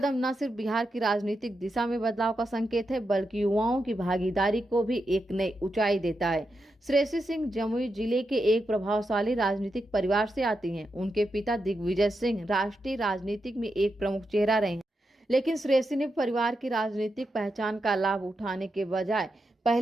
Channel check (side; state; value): both; normal; correlation 0.86